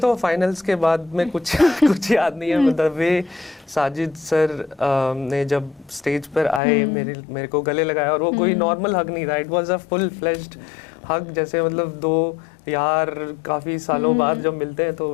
फाइनल्स के बाद में कुछ कुछ याद नहीं है। मतलब वे साजिद सर ने जब स्टेज पर आए, मेरे को गले लगाया, और वो कोई नॉर्मल हग नहीं था, it was a full fleshed hug, जैसे मतलब 2 यार काफ़ी सालों बाद जब मिलते हैं तो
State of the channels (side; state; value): right; drops out; at 6.6 s